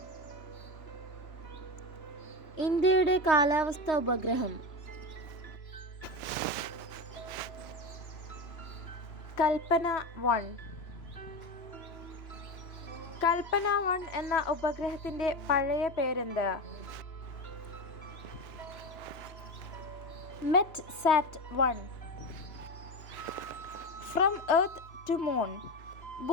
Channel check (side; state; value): right; late; 3.0 ms